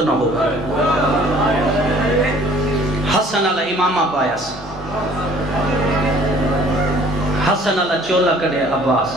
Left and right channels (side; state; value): both; normal; correlation 0.54